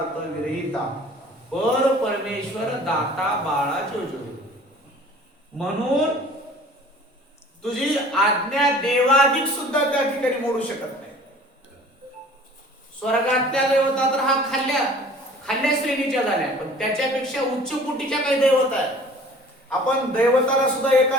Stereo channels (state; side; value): normal; both; correlation 0.48